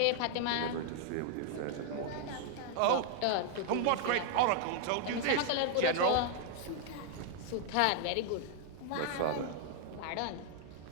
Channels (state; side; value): different; both; correlation 0.00